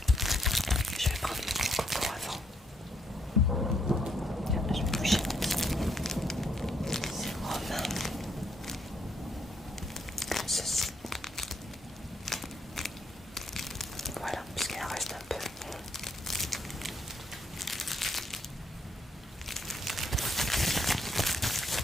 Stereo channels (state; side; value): normal; both; correlation 0.74